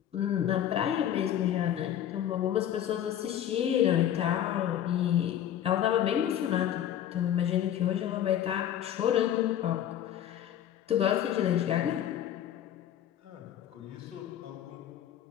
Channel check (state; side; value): quieter; right; 10.8 dB